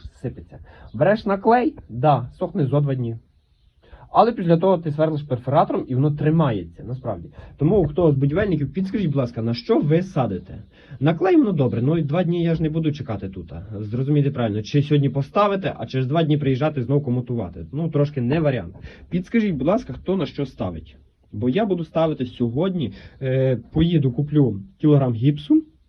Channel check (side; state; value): both; identical; correlation 1.00